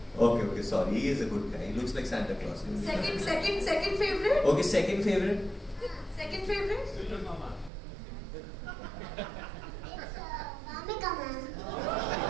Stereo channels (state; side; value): drops out; left; at 7.7 s